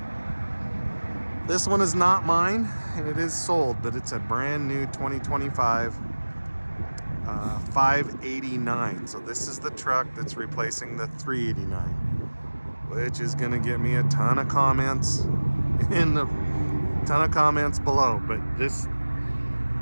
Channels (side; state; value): both; inverted; correlation -1.00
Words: This one is not mine, and it is sold, but it's a brand new 2025 589. So this is the truck that's replacing the 389, which is going to get me a ton of comments below. But this